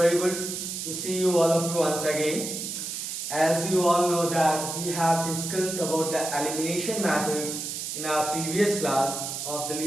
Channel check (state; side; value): noise; right; hiss, 5 dB below the sound